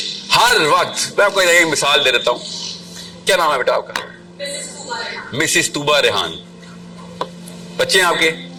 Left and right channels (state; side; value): identical; both; correlation 1.00